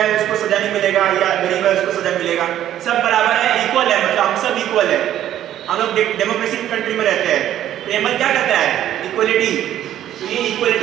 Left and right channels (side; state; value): left; quieter; 11.8 dB